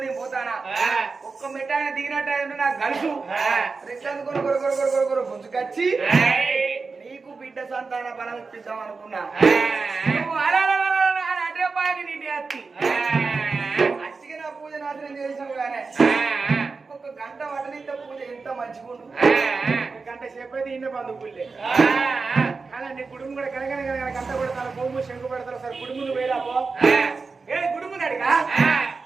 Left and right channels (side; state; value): left; quieter; 4.4 dB